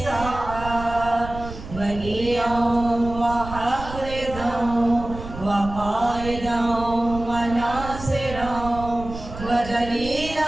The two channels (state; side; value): noise; right; rumble, 11 dB below the sound